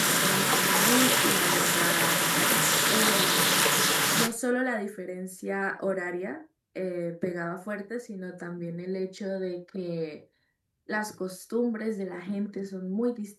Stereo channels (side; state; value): both; identical; correlation 1.00